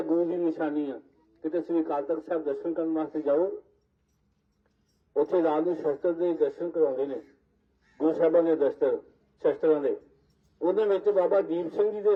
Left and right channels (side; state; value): both; identical; correlation 1.00